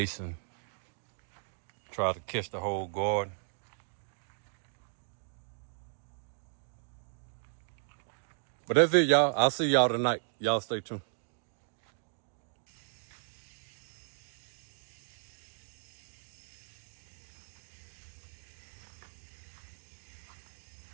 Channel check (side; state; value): left; silent; digital silence